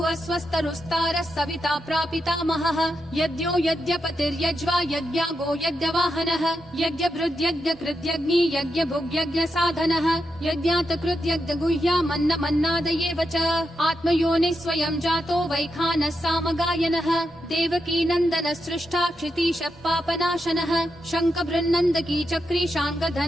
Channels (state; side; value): normal; both; correlation 0.85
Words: स्वस्तरुस्तारः सविता प्रापितामहः यज्ञो यज्ञपतिर्यज्वा यज्ञागो यज्ञवाहनः यज्ञभृद्यज्ञकृत्यग्नि यज्ञभुग्यज्ञसाधनः यज्ञातकृत्यज्ञगुह्या मन्नादयेव च आत्मयोनिः स्वयं जातो वैखानः सामगायनः देवकी नन्दनः सृष्टा क्षितीशः पापनाशनः शङ्खबृन्नन्दकी चक्री